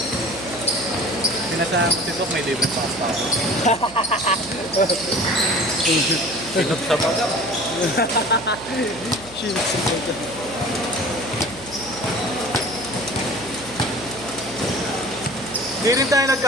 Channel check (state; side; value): noise; right; hum, 19 dB below the sound